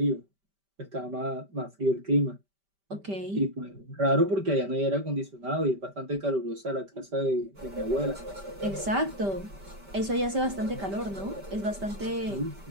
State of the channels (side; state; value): left; late; 5.1 ms